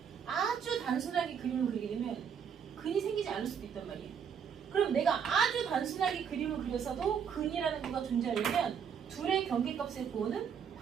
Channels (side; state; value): left; quieter; 7.4 dB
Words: 아주 단순하게 그림을 그리게 되면 근이 생기지 않을 수도 있단 말이에요. 그럼 내가 아주 단순하게 그림을 그려서도 근이라는 거가 존재하려면 둘의 경계값의 부호는